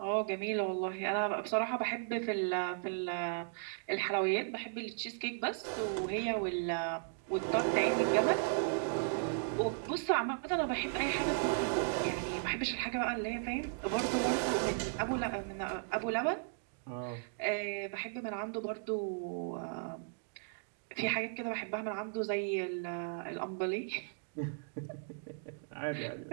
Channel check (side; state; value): left; silent; digital silence